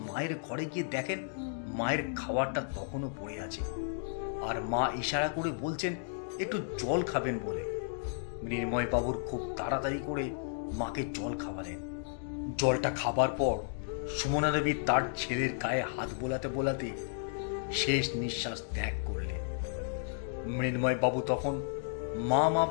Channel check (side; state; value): right; silent; digital silence